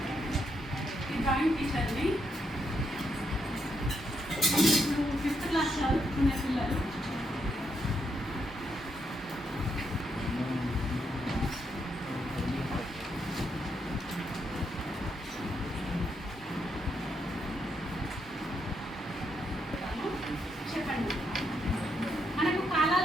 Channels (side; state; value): both; normal; correlation 0.78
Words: Drawing టీచర్ని ఇప్పుడు 5th class చదువుకునే పిల్లలు చెప్పండి. మనకు